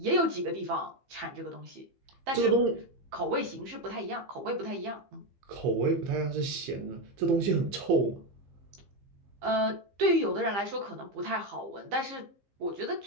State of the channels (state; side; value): late; left; 15 ms